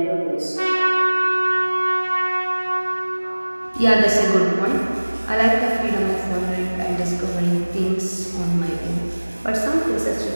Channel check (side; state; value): both; inverted; correlation -1.00